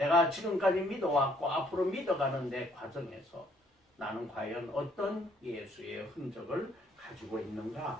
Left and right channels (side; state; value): both; normal; correlation 0.65